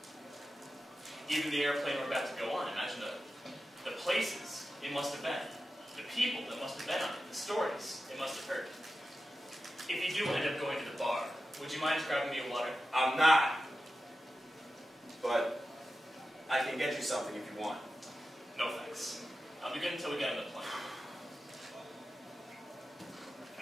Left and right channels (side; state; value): both; normal; correlation 0.92